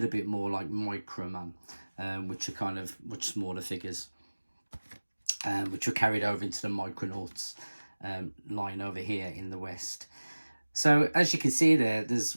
bit more like Microman, which are kind of much smaller figures, which were carried over into the Micronauts line over here in the West. So as you can see there, there's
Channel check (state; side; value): inverted; both; correlation -1.00